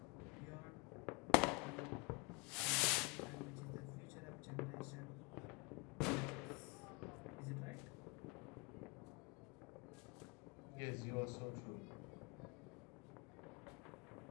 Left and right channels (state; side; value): quieter; right; 29.2 dB